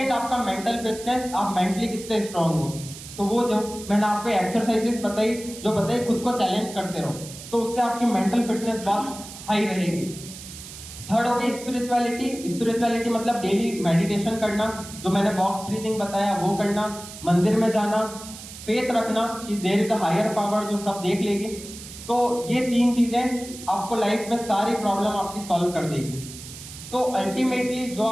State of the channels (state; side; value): noise; right; hiss, 14 dB below the sound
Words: आपका मेंटल फिटनेस, आप मेंटली कितने स्ट्रांग हो। तो वो जो मैंने आपको एक्सरसाइजेस बताई, जो बताई खुद को चैलेंज करते रहो, तो उससे आपकी मेंटल फिटनेस बहुत हाई रहेगी। थर्ड हो गई स्पिरिचुअलिटी। स्पिरिचुअलिटी मतलब डेली मेडिटेशन करना, जो मैंने बॉक्स ब्रीथिंग बताया वो करना, मंदिर में जाना, फेथ रखना कि there is a higher power जो सब देख लेगी। तो ये 3 चीजें आपको लाइफ में सारी प्रॉब्लम आपकी सॉल्व कर देगी। तो अल्टीमेटली जो